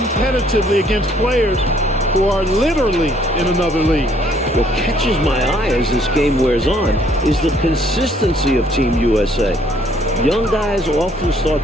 against players who are literally in another league. What catches my eye as this game wears on is the consistency of Team USA. Young guys often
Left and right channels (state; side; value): normal; both; correlation 0.64